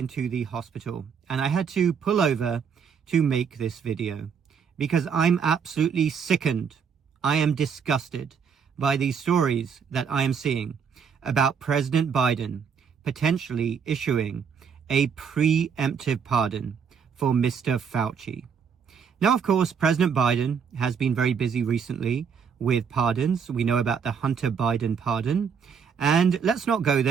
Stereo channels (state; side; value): quieter; left; 6.7 dB